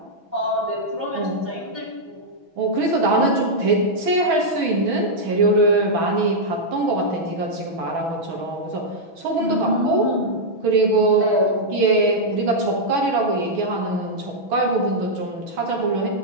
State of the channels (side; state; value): left; late; 6.1 ms